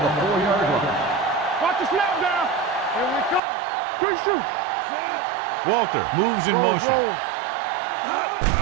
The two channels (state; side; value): drops out; left; at 3.4 s